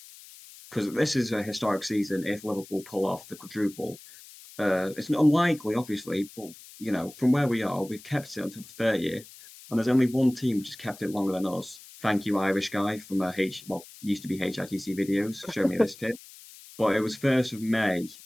because this is a historic season. If Liverpool pull off the quadruple, it's unlikely, obviously, but from where we are, we've kept it until the 30th, and there's only one team which has kept it longer than us. Thank you, Irish guy from used to be HITC videos. Show me this tip. But it was 1st of May,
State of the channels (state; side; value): noise; left; hiss, 19 dB below the sound